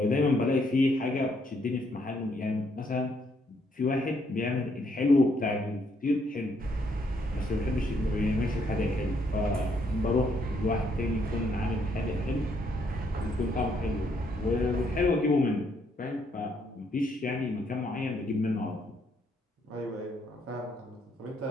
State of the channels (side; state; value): both; normal; correlation 0.72